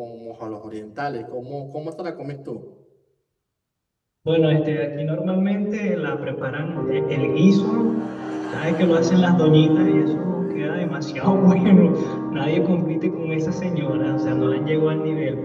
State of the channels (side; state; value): both; identical; correlation 1.00